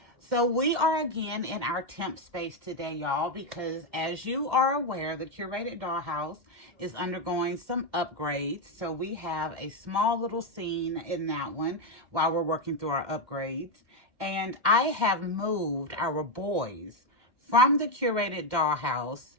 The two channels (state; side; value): late; left; 2.1 ms